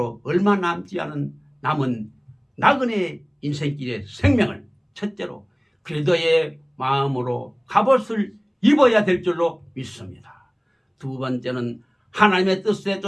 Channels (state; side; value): identical; both; correlation 1.00